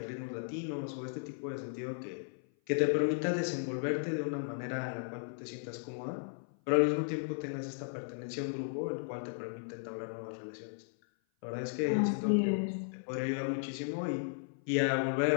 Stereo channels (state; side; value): silent; right; 54 dB below the other